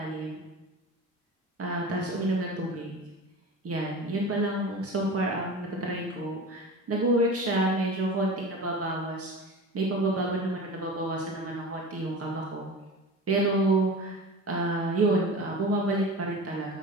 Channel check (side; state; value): both; normal; correlation 0.33